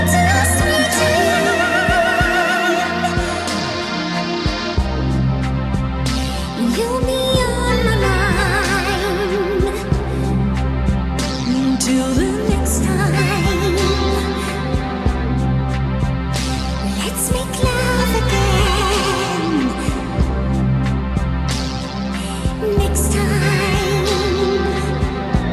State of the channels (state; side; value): identical; both; correlation 1.00